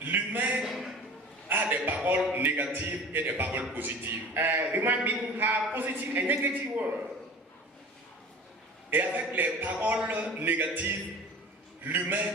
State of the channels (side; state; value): both; normal; correlation 0.40